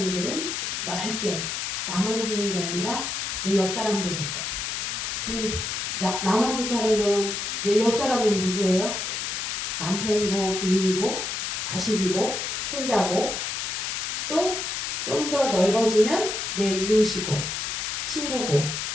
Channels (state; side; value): noise; left; hiss, 3 dB below the sound